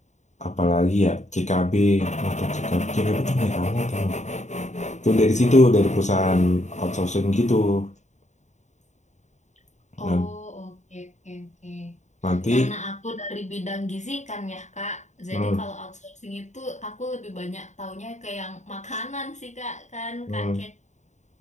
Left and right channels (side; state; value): right; late; 0.34 ms